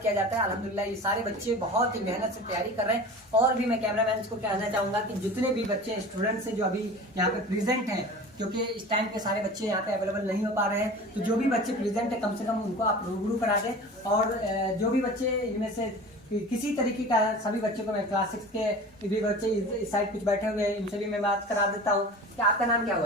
जाता है। अल्हम्दुलिल्लाह ये सारे बच्चे बहुत ही मेहनत से तैयारी कर रहे हैं। और भी मैं कैमरामैन को कहना चाहूँगा कि जितने भी बच्चे स्टूडेंट्स हैं जो अभी यहाँ पे प्रेजेंट हैं, क्योंकि इस टाइम पे सारे बच्चे यहाँ पे अवेलेबल नहीं हो पा रहे हैं, तो जो भी बच्चे प्रेजेंट है कम से कम उनको आप रूबरू करा दें। और जो भी बच्चे इनमें से किसी तरीके का, सभी बच्चों को मैं क्लास 6 के भी बच्चे इस साइड कुछ बैठे हुए हैं, इनसे भी मैं बात करा देता हूँ। कि आपका नाम क्या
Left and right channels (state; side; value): normal; both; correlation 0.37